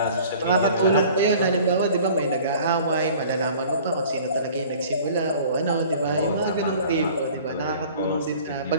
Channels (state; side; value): inverted; both; correlation -0.48